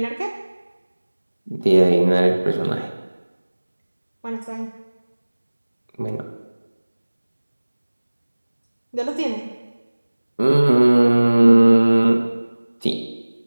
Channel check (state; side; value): inverted; both; correlation -1.00